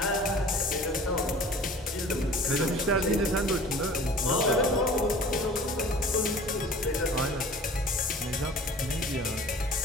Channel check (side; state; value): both; normal; correlation 0.45